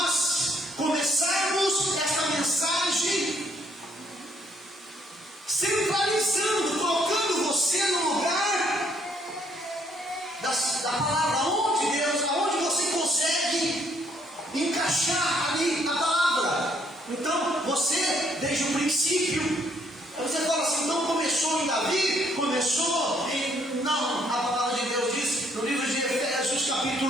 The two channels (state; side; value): normal; both; correlation 0.68